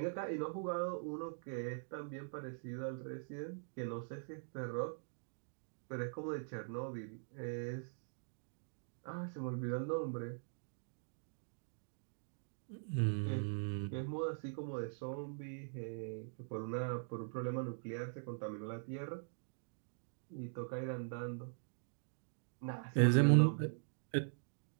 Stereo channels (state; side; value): silent; left; digital silence